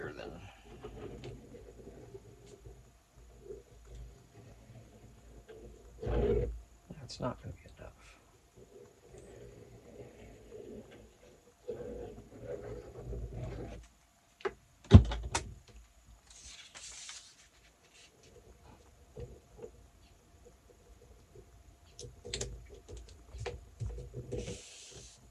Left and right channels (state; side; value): identical; both; correlation 1.00